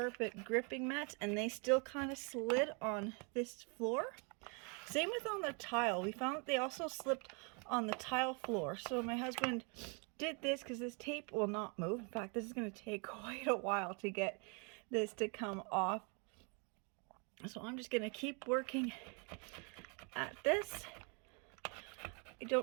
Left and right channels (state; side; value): quieter; left; 35.3 dB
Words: gripping mats and they still kind of slid on this floor. Same with on the tile. We found that they also slipped on the tile floor. So my husband did this because this tape will not move. In fact, this is going to take quite a while to get this to come off. So I'm just going to keep working at this. I